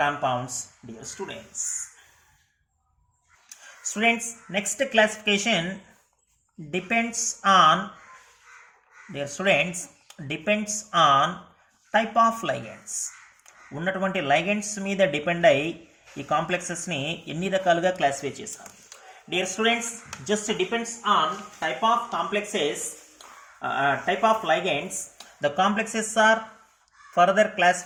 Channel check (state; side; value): identical; both; correlation 1.00